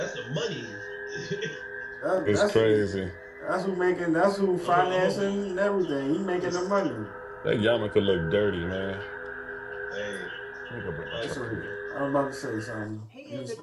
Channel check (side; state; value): both; identical; correlation 1.00